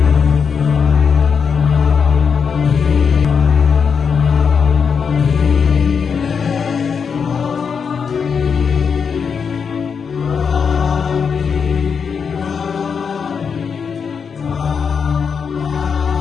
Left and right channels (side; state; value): right; quieter; 6.3 dB